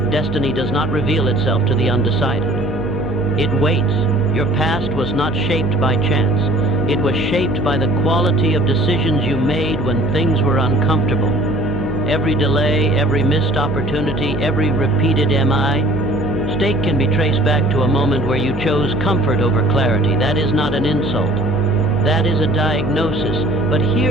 Destiny does not reveal itself to the undecided. It waits. Your past was not shaped by chance. It was shaped by the quality of decisions you made when things were uncomfortable. Every delay, every missed opportunity, every repeated mistake can be traced back to a moment where you chose comfort over clarity. That is not an insult. That is a diagnosis. But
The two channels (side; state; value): right; noise; hum, 12 dB below the sound